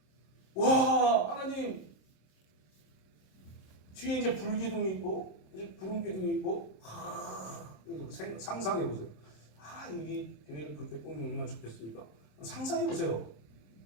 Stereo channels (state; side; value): late; right; 27 ms